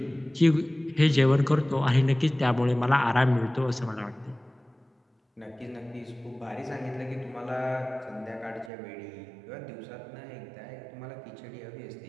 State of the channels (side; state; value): left; drops out; at 8.7 s